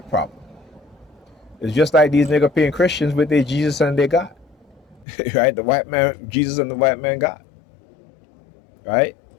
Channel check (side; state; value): right; drops out; at 5.1 s